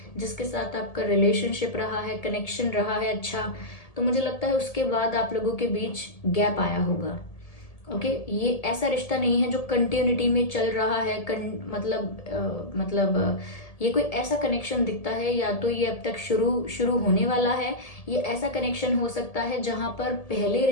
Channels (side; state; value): right; late; 1.7 ms